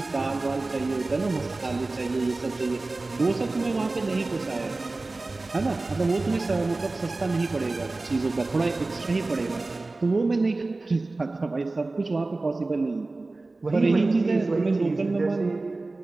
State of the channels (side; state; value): left; quieter; 3.2 dB